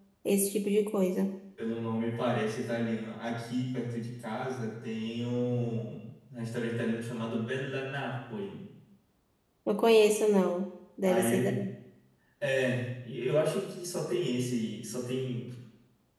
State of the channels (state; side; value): identical; both; correlation 1.00